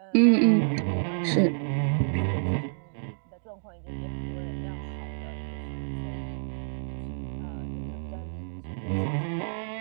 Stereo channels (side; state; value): left; silent; digital silence